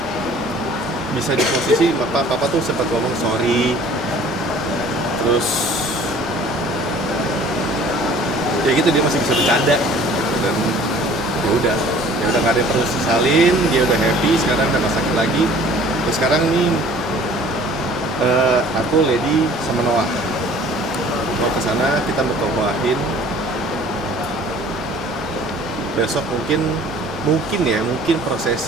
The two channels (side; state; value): both; normal; correlation 0.51